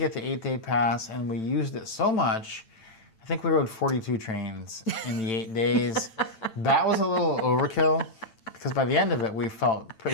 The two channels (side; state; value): right; late; 9.0 ms